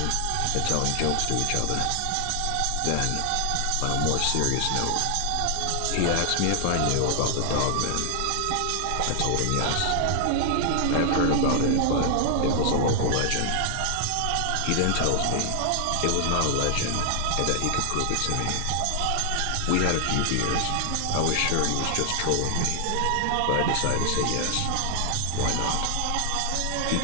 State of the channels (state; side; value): different; both; correlation 0.00